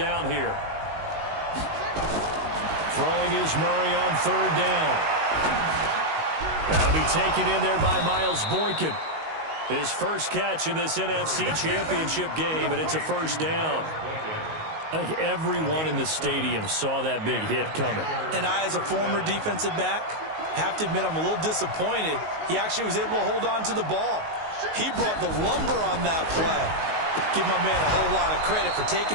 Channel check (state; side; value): late; left; 19 ms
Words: here. Throwing is Murray on 3rd down. That'll be taken in there by Miles Boykin. His first catch in this NFC Championship game, and it's a 1st down. I think everyone in the stadium saw that big hit coming. And I, as a former defensive back, Have to admit, I'm a little disappointed. He actually was able to hold on to the ball. He brought the lumber on that play. Give my man a whole lot of credit for